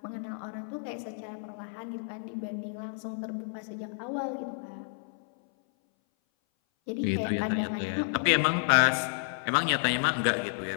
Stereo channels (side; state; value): right; silent; 58 dB below the other